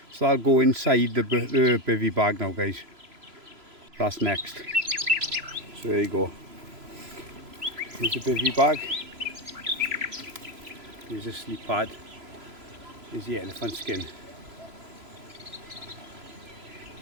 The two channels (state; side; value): late; left; 3.0 ms